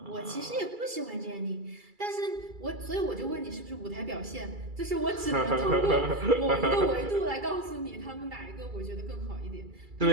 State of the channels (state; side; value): late; left; 2.3 ms